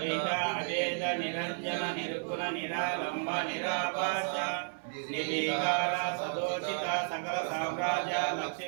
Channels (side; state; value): left; silent; digital silence